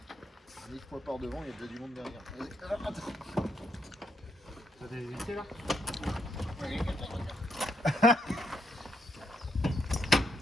X mois par devant, il y a déjà du monde derrière. Alors, attends. T'as des invités, là?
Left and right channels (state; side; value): normal; both; correlation 0.77